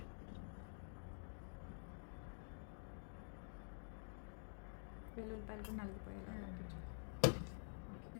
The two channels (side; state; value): right; silent; digital silence